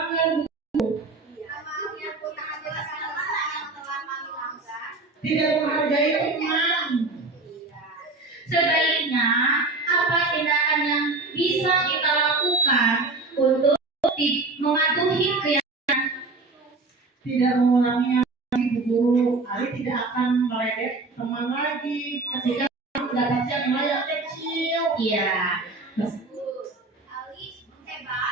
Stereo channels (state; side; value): quieter; left; 3.5 dB